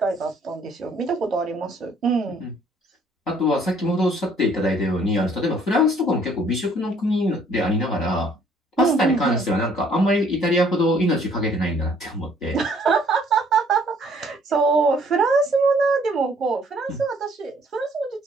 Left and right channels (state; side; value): normal; both; correlation 0.61